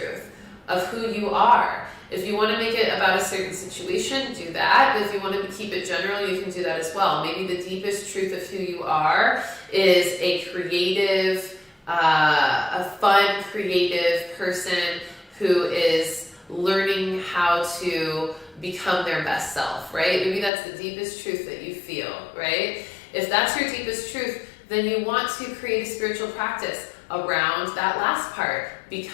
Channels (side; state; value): right; drops out; at 20.5 s